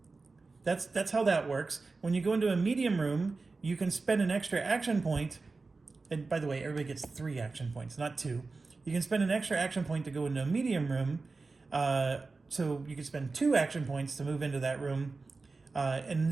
that's how that works. When you go into a medium room, you can spend an extra action point. And by the way, everybody gets 3 action points, not 2. You can spend an extra action point to go into a medium room. So you can spend 2 action points to move into that room and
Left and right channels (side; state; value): left; quieter; 3.9 dB